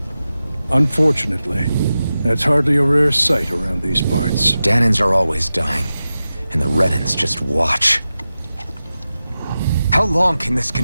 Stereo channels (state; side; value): inverted; both; correlation -0.93